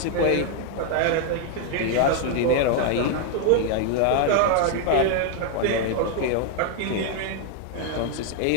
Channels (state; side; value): different; both; correlation 0.00